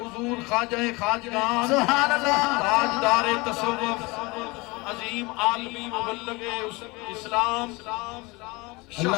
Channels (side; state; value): right; quieter; 24.7 dB